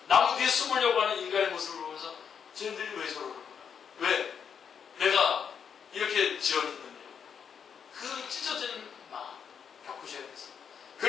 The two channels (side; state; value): right; quieter; 7.3 dB